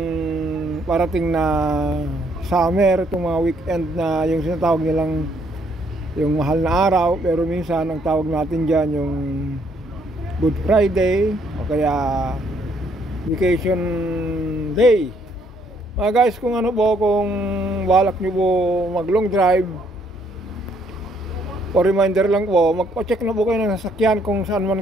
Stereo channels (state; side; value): normal; both; correlation 0.68